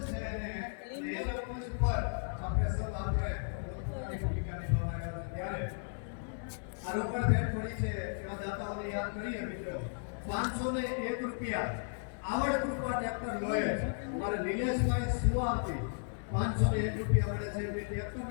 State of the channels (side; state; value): right; silent; digital silence